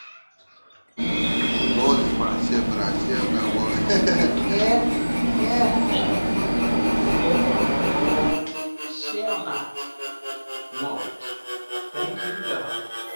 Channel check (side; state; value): both; inverted; correlation -1.00